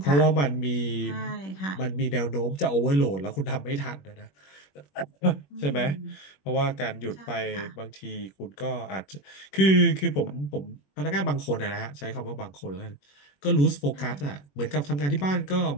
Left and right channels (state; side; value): late; right; 21 ms